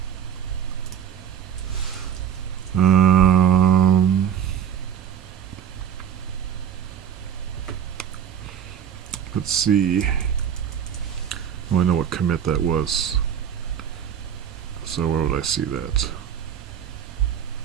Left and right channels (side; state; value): left; quieter; 8.8 dB